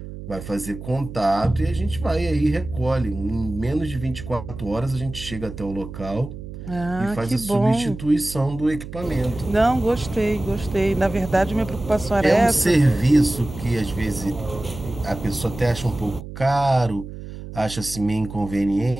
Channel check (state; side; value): noise; right; hum, 11 dB below the sound